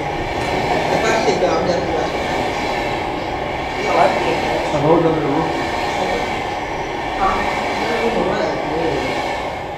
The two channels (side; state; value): both; identical; correlation 1.00